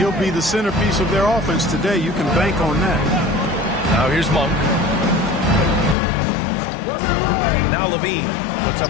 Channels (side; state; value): right; drops out; at 6.0 s